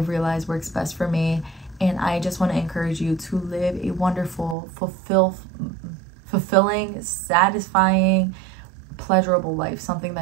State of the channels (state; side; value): drops out; left; at 4.5 s